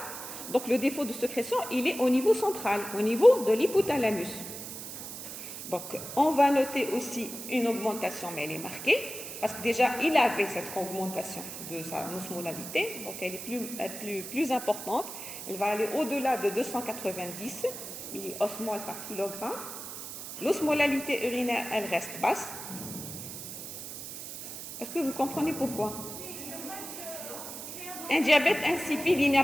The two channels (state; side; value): noise; right; hiss, 9 dB below the sound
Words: donc le défaut de sécrétion, il est au niveau central, au niveau de l'hypothalamus. Donc on va noter aussi une augmentation, mais elle est marquée, parce que déjà il avait cette augmentation de sa osmolalité, donc elle est plus importante, elle va aller au-delà de 290 milliosmoles par kilogramme. L'osmolalité urinaire, elle reste basse. Est-ce que vous comprenez pourquoi? Un diabète insipide, il n'a